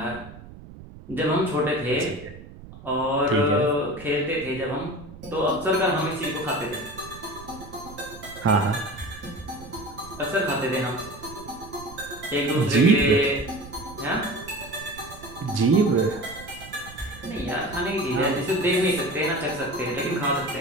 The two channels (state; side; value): noise; right; rumble, 17 dB below the sound